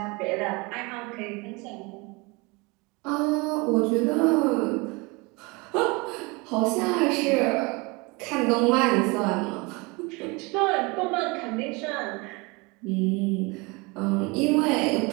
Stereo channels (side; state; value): left; quieter; 26.8 dB